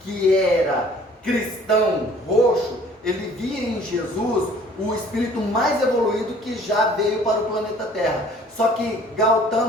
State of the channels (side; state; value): both; normal; correlation 0.53